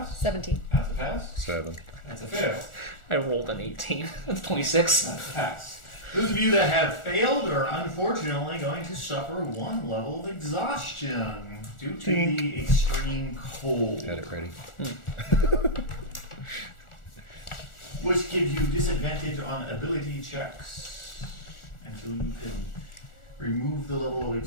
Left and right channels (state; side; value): late; right; 1.4 ms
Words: 17. That's a pass. 7. That's a fail. I rolled an 18. That's 26. That's a pass. Those of you that have failed are unfortunately going to suffer 1 level of exhaustion due to the extreme cold, Got it ready. which gives you disadvantage on ability checks until you can remove the level of